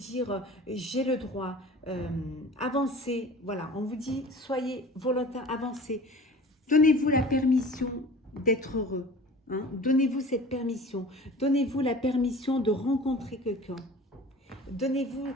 j'ai le droit, avancez. Voilà, on vous dit soyez volontaire, avancez. Donnez-vous la permission d'être heureux. Hein? Donnez-vous cette permission. Donnez-vous la permission de rencontrer quelqu'un. Donnez-vous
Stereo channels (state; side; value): normal; both; correlation 0.42